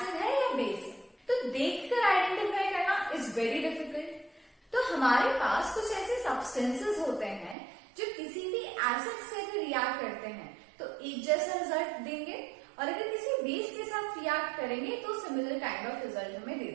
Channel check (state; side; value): drops out; left; at 7.6 s